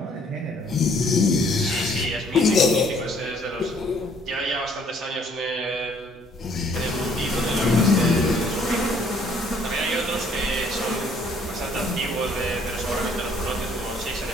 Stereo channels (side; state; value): both; normal; correlation 0.62